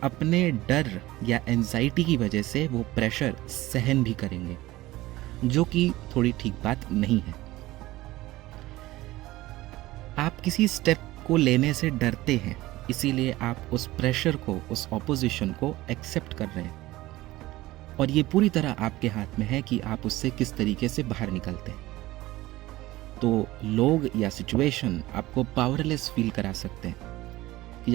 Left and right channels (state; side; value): quieter; left; 17.8 dB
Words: अपने डर या एंजाइटी की वजह से वो प्रेशर सहन भी करेंगे, जो कि थोड़ी ठीक बात नहीं है। आप किसी स्टेप को लेने से डरते हैं, इसीलिए आप उस प्रेशर को, उस ऑपोजिशन को एक्सेप्ट कर रहे हैं, और ये पूरी तरह आपके हाथ में है कि आप उससे किस तरीके से बाहर निकलते हैं। तो लोग या सिचुएशन आपको पावरलेस फील करा सकते हैं, कि